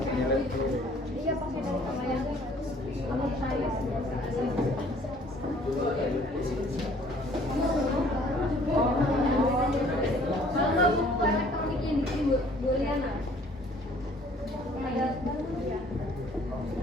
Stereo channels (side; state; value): both; normal; correlation 0.57